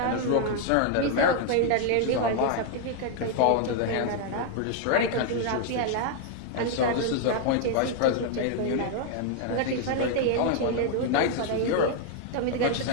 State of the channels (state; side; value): different; both; correlation 0.00